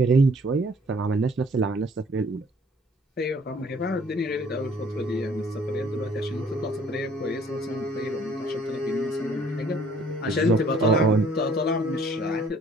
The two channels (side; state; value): both; normal; correlation 0.58